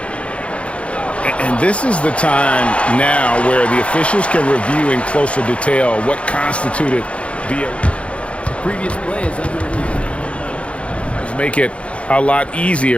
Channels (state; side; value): late; right; 0.061 ms